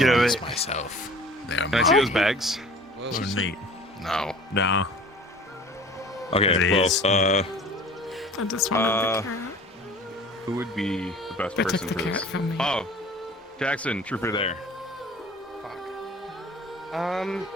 over it. myself. Can I see those bags? Oh, neat. No. No. Okay, It well, is. I just wanted the carrot. who would be the best They person took the for this? carrot from me. Oh, Jackson, trooper there. That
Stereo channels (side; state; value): both; normal; correlation 0.46